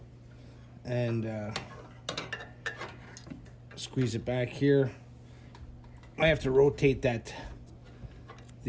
And squeeze it back here. I have to rotate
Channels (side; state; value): both; identical; correlation 1.00